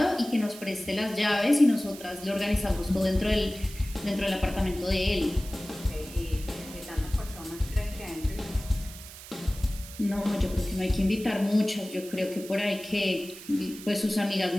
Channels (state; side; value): noise; right; hiss, 15 dB below the sound